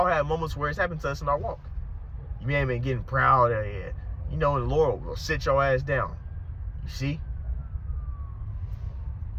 have moments where it's happened to us in our walk. You may have been getting proud, and the Lord will sit your ass down. You see?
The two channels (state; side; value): identical; both; correlation 1.00